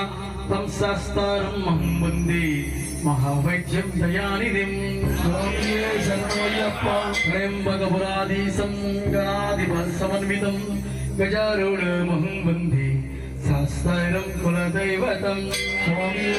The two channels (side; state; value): both; identical; correlation 1.00